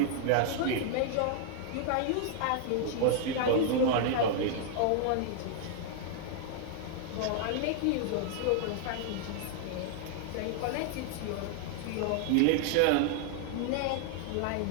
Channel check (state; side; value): different; both; correlation 0.00